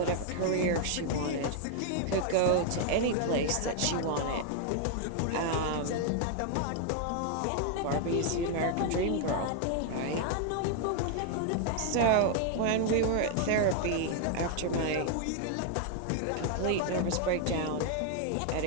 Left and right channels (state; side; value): different; both; correlation 0.00